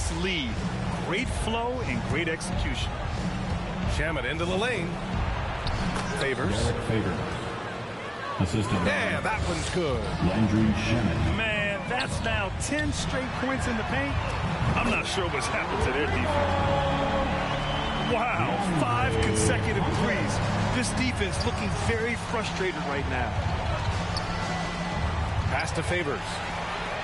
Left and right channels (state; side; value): identical; both; correlation 1.00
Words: lead. Great flow and great execution. Shamet into the lane. Favors. Assistant. Yeah, that one's good. Landry Shamet. Man, that's now 10 straight points in the paint. I'm not sure what's happened to their defense. Wow, 5 consecutive threes. This defense looking very frustrated right now. Pass to Favors.